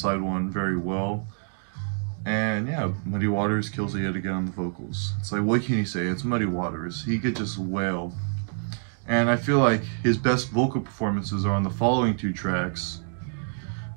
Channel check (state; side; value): silent; left; digital silence